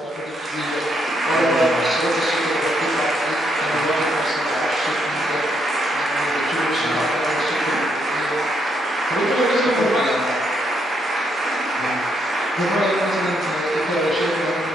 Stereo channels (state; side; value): normal; both; correlation 0.76